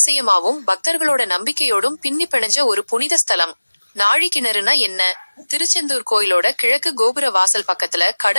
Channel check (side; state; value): both; inverted; correlation -1.00